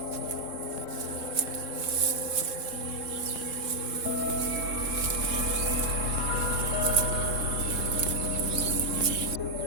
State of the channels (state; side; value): late; left; 3.7 ms